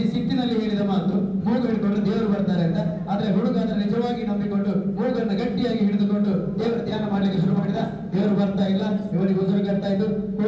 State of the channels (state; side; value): identical; both; correlation 1.00